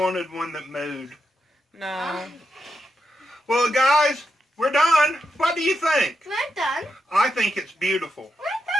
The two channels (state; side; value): normal; both; correlation 0.85